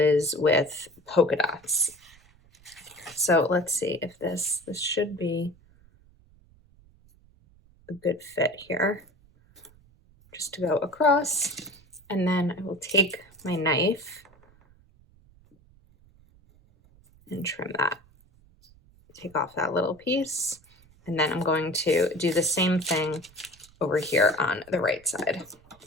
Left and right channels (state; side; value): noise; right; rumble, 28 dB below the sound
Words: with polka dots. So let's see if this should be a good fit here. Just to go across, and then I will take my knife and trim that. Take off that little piece, and then I'm going to do the same thing over here on the right side.